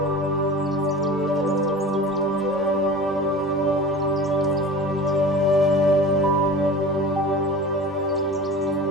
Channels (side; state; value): both; normal; correlation 0.37